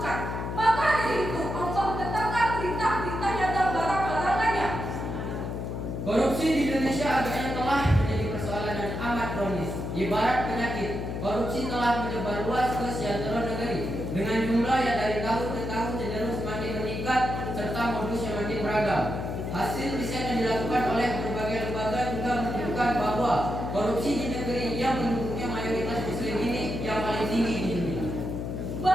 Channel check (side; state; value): left; noise; hum, 4 dB below the sound